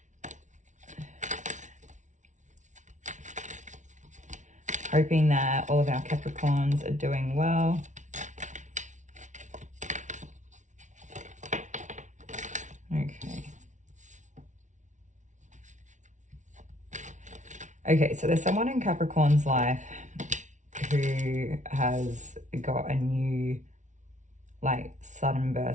Hoping that all of our Capricorns are doing well. Okay, so there's someone in Capricorn's life who has got a new, like, sudden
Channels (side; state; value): left; late; 0.36 ms